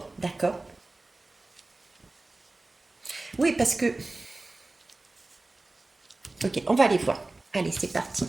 d'accord? Oui, parce que... Ok, on va aller voir. Allez, c'est parti.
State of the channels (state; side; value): quieter; left; 3.1 dB